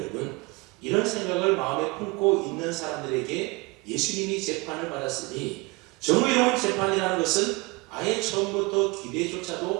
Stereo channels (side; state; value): left; quieter; 25.7 dB